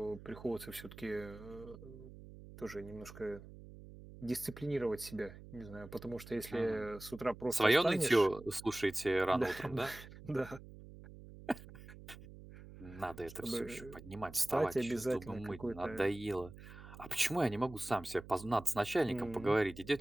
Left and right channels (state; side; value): noise; right; hum, 16 dB below the sound